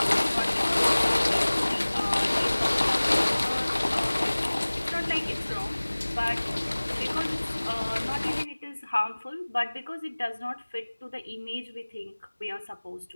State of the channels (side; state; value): both; inverted; correlation -1.00